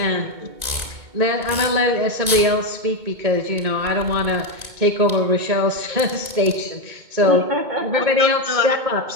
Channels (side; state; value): left; late; 2.2 ms